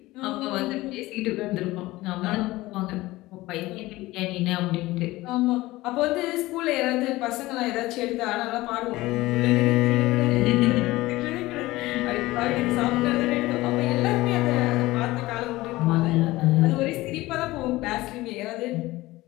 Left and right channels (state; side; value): quieter; right; 18.7 dB